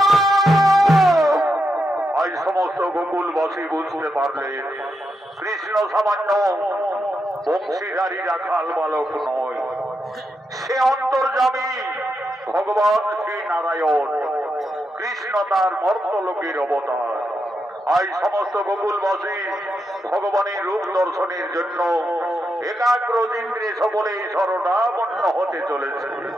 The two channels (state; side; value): normal; both; correlation 0.84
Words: কৃষ্ণ সামান্য বংশীধারী রাখাল বালক নয়, সে অন্তর্যামী ভগবান শ্রী নারায়ণ। কৃষ্ণ তার মর্তলোকের অবতার। আজ সমস্ত গোকুলবাসী ভগবানের রূপ দর্শনের জন্য একাগ্র ইন্দ্রে সকলে শরণাপন্ন হতে চলেছে।